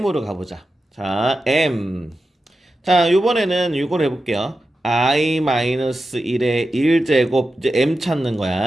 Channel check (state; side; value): normal; both; correlation 0.91